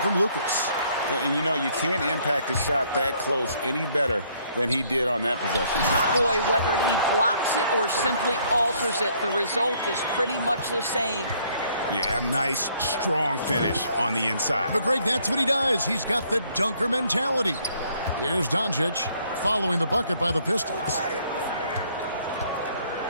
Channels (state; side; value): inverted; both; correlation -0.65